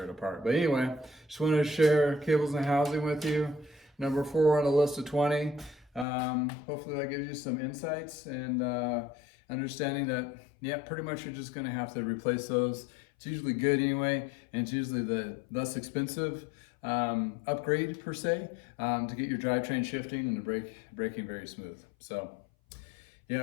it apart. But anyway, just wanted to share cables and housing with you. Number 4 on the list of 20. Hopefully that gives you some insights and understanding that, yeah, pretty much you're just gonna have to replace those. It's usually good anyway, and it's usually the less expensive upgrade per se, to get your drivetrain shifting and the braking very smooth. So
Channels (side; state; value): right; drops out; at 6.1 s